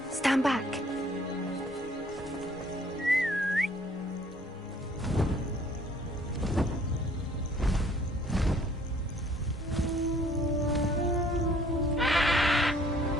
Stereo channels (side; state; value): both; normal; correlation 0.59